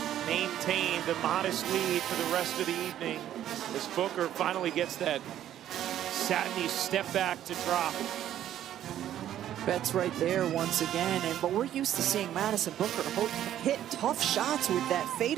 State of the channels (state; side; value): quieter; left; 11.5 dB